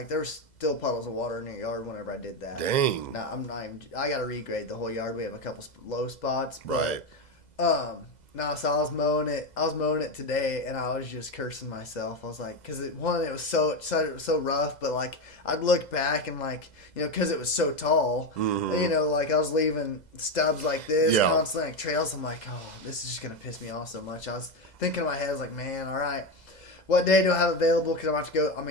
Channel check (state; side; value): late; right; 2.0 ms